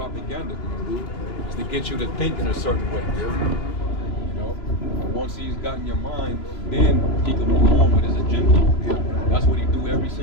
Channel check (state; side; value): late; right; 3.0 ms